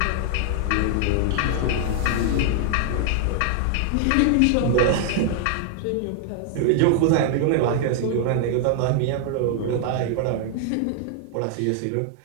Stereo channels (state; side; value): different; both; correlation 0.00